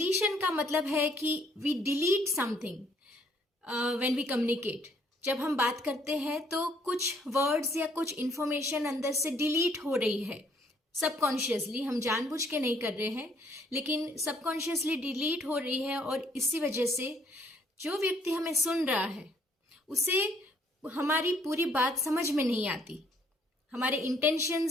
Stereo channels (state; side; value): normal; both; correlation 0.65